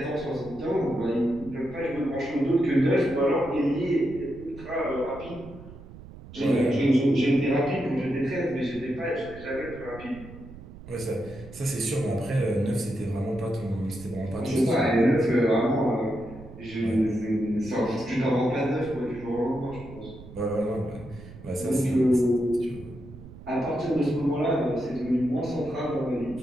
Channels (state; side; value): noise; right; rumble, 16 dB below the sound